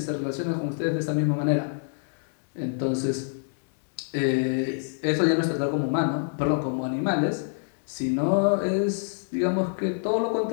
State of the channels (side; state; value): right; silent; digital silence